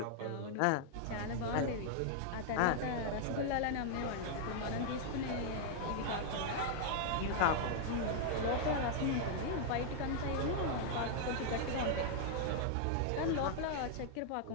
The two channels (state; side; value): different; both; correlation -0.01